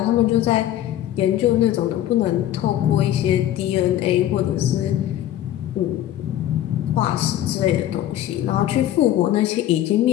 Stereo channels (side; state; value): right; quieter; 12.5 dB